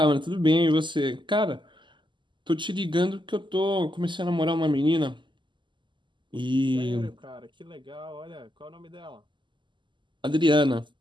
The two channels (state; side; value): late; left; 0.23 ms